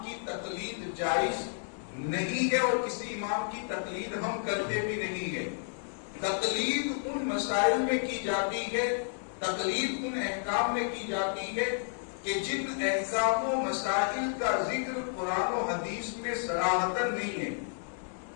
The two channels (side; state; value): right; silent; digital silence